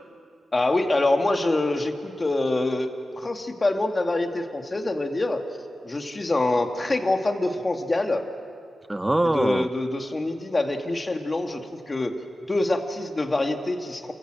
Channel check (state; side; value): normal; both; correlation 0.96